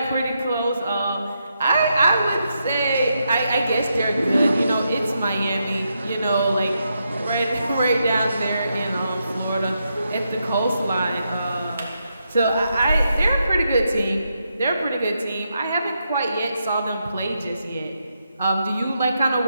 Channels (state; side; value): inverted; both; correlation -0.83